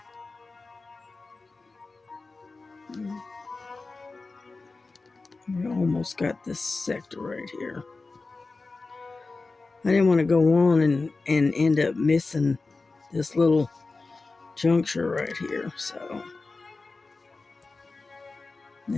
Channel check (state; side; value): quieter; right; 3.7 dB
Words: We almost got this sector right here. I didn't want to go on and end up missing this little juncture right here, so,